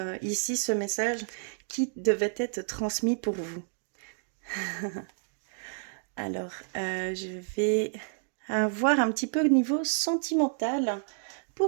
ici ce message qui devait être transmis pour vous. Alors, je vais voir un petit peu au niveau sentimental.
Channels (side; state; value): left; silent; digital silence